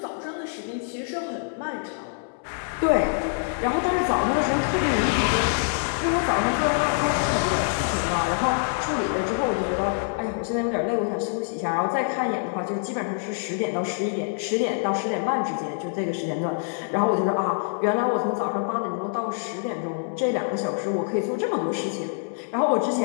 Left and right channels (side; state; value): right; silent; 61 dB below the other